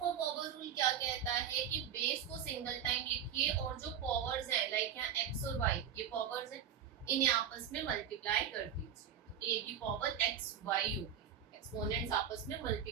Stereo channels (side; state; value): left; quieter; 8.7 dB